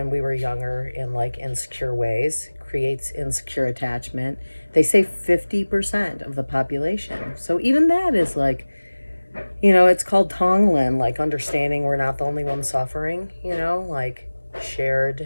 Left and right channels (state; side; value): inverted; both; correlation -1.00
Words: we were younger in insecure ways, creates insecure attachment. They say 50% of the population. So even that is it's called Tonglen, understanding we're not the only one suffering,